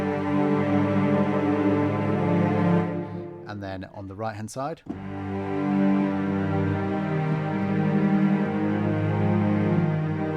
And then on the right hand side.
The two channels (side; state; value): both; identical; correlation 1.00